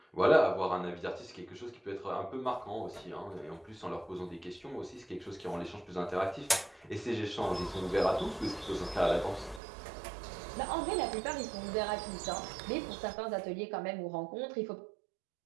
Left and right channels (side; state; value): left; drops out; at 9.6 s